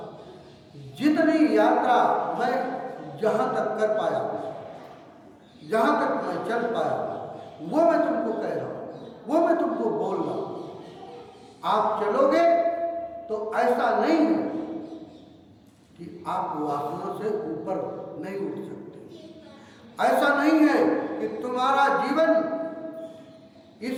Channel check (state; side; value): identical; both; correlation 1.00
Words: जितनी यात्रा मैं जहां तक कर पाया, जहां तक मैं चल पाया, वो मैं तुमको कह रहा हूं, वो मैं तुमको बोल रहा हूं। आप चलोगे तो ऐसा नहीं है कि आप वासना से ऊपर नहीं उठ सकते। ऐसा नहीं है कि तुम्हारा जीवन